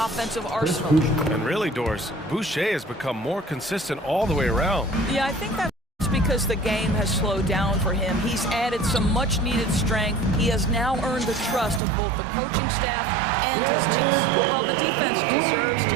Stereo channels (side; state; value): left; drops out; at 11.8 s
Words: arsenal. And really, Doris, Boucher has become more consistent all the way around. Yeah, I think that's because the game has slowed down for him. He's added some much-needed strength. He has now earned the trust of both the coaching staff and his team. Well, the defense deserves to